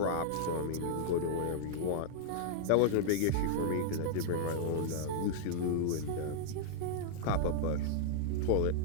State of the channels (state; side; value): different; both; correlation -0.01